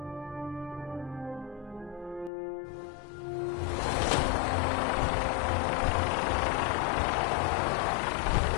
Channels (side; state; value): right; drops out; at 2.3 s